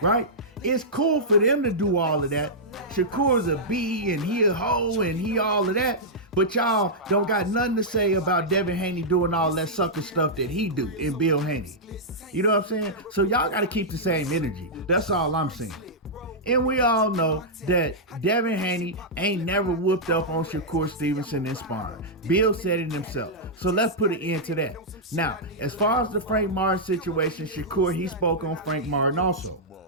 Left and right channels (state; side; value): normal; both; correlation -0.09